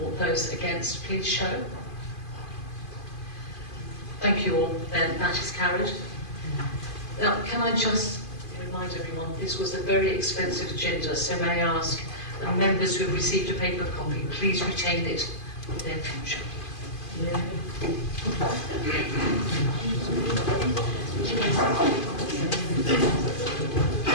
those against please show? Thank you all. Then that is carried. Now, can I just remind everyone, this was a very expensive agenda, so may I ask the members who have received a paper copy, please retain it for their future.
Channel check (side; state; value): right; late; 2.5 ms